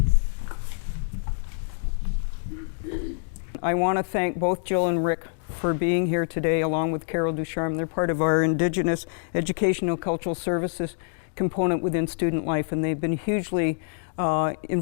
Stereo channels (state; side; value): silent; right; digital silence